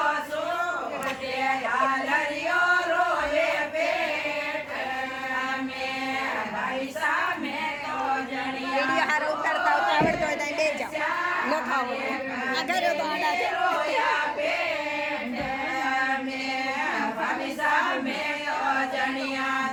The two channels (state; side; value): identical; both; correlation 1.00